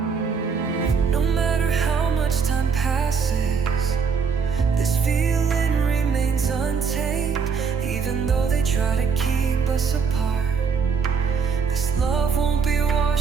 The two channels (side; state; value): left; quieter; 5.8 dB